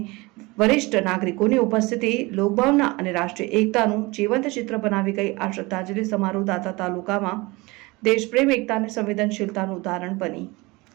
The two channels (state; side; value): quieter; left; 23.5 dB